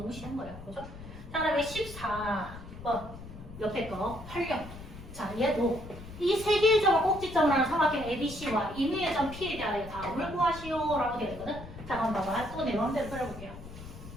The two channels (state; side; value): noise; left; rumble, 14 dB below the sound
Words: 너무 쉬운 거예요. 그죠? 자, 그다음에 14번 옆에 거 활용. 자, 얘도 이 세 개의 점을 꼭지점을 하는 삼각형 ABC와 임의의 점 P에 대하여 답을 구하시오라고 되어 있거든. 자, 그럼 봐봐. 또 내 마음대로 그려볼게요.